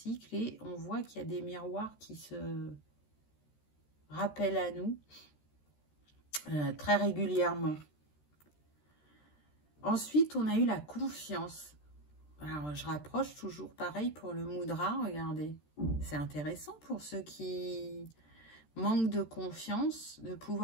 et on voit qu'il y a des miroirs qui se rappellent à nous très régulièrement. Ensuite, on a eu la confiance. Alors, je rapproche toujours pareil pour le mudra, regardez. C'est intéressant pour ceux qui manquent de confiance de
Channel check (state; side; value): late; right; 13 ms